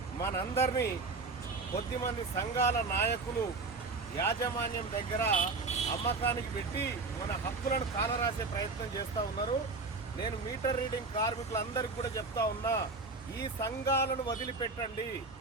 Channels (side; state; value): left; quieter; 3.9 dB